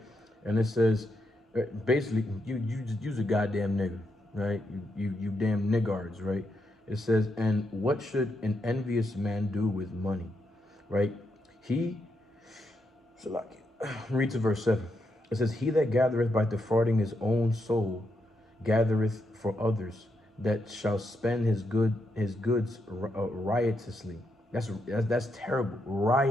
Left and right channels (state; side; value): normal; both; correlation 0.81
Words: And it says, basically, you just use a goddamn nigger, right? You damn niggards, right? It says, and what should an envious man do with money, right? Read to verse 7. It says, he that gathereth by defrauding his own soul gathereth for others, that shall spend his goods riotously. That's terrible.